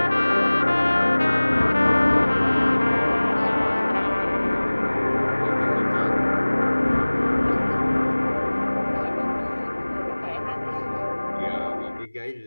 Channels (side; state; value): both; inverted; correlation -1.00